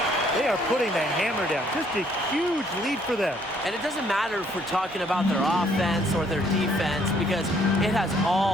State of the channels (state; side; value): normal; both; correlation 0.65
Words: They are putting the hammer down. Just a huge lead for them. And it doesn't matter if we're talking about their offense or their defense because it has